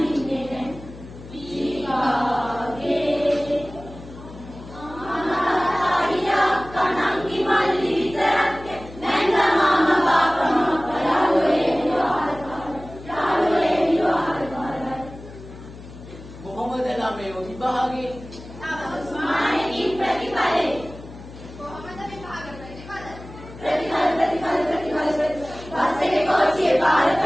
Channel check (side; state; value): left; noise; hum, 16 dB below the sound